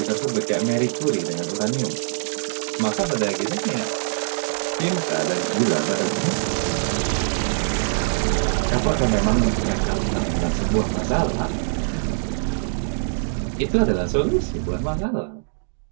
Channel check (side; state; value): left; silent; digital silence